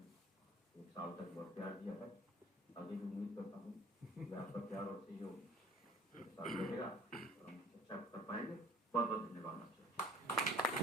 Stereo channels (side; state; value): both; normal; correlation 0.50